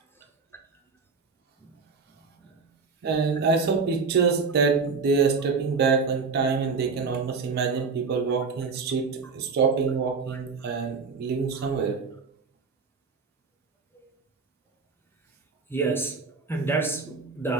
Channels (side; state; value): left; quieter; 4.8 dB